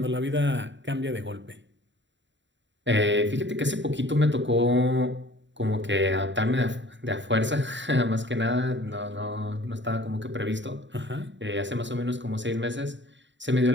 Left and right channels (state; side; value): late; left; 0.53 ms